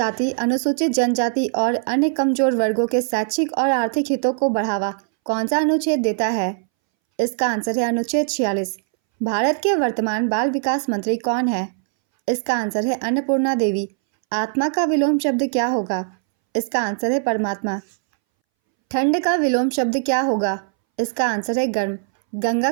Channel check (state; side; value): silent; left; 63 dB below the other